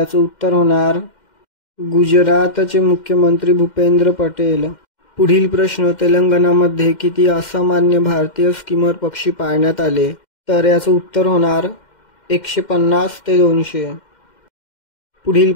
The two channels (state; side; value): late; right; 2.1 ms